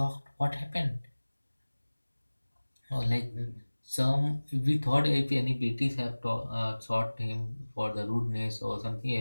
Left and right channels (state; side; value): inverted; both; correlation -1.00